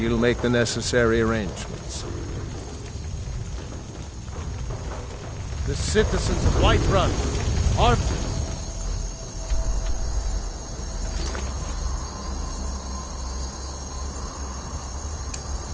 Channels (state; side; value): identical; both; correlation 1.00